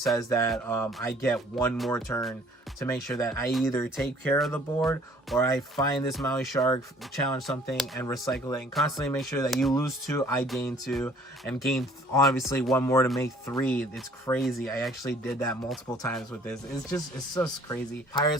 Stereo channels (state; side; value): normal; both; correlation 0.56